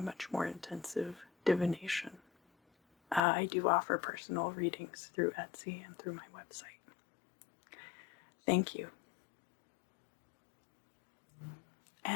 much more intensive divination. I do offer personal readings through Etsy and through my website. Thank you.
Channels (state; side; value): drops out; right; at 3.2 s